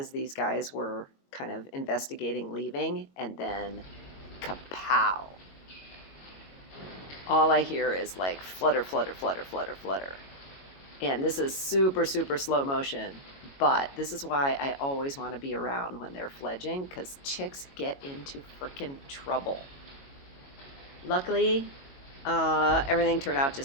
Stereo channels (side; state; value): right; late; 22 ms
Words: these guys were kind of investigating leaving, and then kapow. All I hear is like flutter, flutter, flutter, flutter, flutter. And this is super, super slow motion, but this is why I always want to be around when they're fledging, because chicks get into frickin' trouble. Luckily, everything turned out